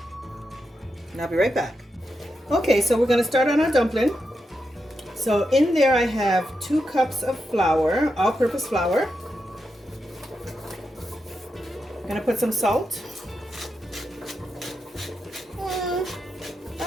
I'll be right back. Okay, so we're going to start on our dumpling. So in there I have 2 cups of flour, all-purpose flour. I'm going to put some salt.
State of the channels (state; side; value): normal; both; correlation 0.86